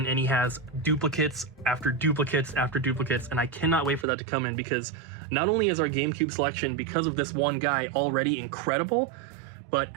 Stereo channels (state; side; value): drops out; left; at 4.0 s